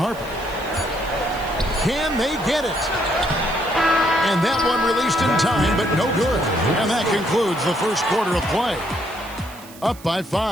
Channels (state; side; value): noise; right; hiss, 20 dB below the sound